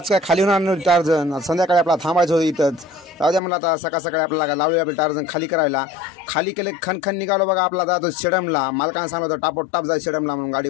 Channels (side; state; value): right; drops out; at 3.4 s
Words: काय खाली होणार नव्हती टार्झन, संध्याकाळी आपला थांबायचं होतं इथंच. जाऊ द्या म्हणलं आता सकाळ सकाळी आपल्याला लावली आपलं टार्झन खाली करायला. खाली केले खणखण निघालो बघा आपला जातो शेडमला. मालकानं सांगलं होतं टापोटाप जाय शेडमला म्हणून, गाडी